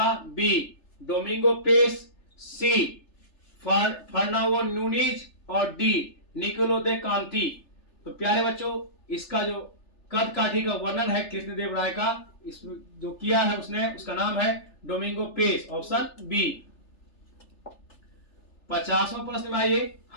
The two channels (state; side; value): late; right; 3.4 ms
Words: बी डोमिंगो पेस, सी फर्नांडो नूनीज और डी निकोलो दे कांति। तो प्यारे बच्चों इसका जो कद काठी का वर्णन है कृष्णदेव राय का, इसमें जो किया है उसने, उसका नाम है डोमिंगो पेस, ऑप्शन बी। 50वां प्रश्न में आइए